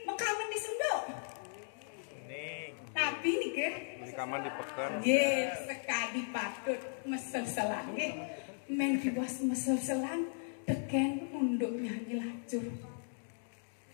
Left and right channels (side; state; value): right; silent; digital silence